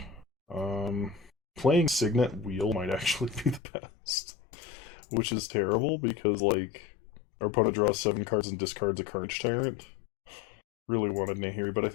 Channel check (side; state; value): right; drops out; at 3.6 s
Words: Playing Signet Wheel might actually be the best. Which is terrible, because, like, our opponent draws 7 cards and discards a Carnage Tyrant. Really wanted Nahiri, but I